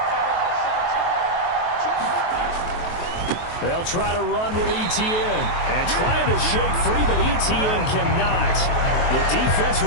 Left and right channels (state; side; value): late; right; 23 ms